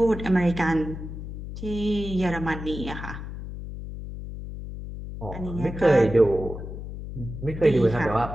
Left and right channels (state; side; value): noise; left; hum, 9 dB below the sound